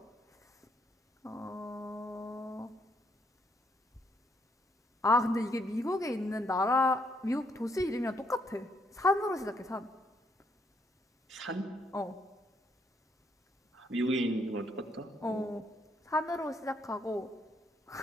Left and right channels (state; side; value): normal; both; correlation 0.73